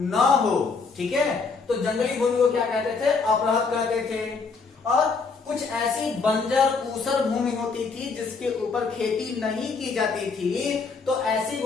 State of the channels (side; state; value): right; quieter; 4.7 dB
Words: हो। ठीक है, तो जंगली भूमि को क्या कहते थे, अप्रहत कहते थे। और कुछ ऐसी बंजर ऊसर भूमि होती थी जिसके ऊपर खेती नहीं की जाती थी, तो ऐसी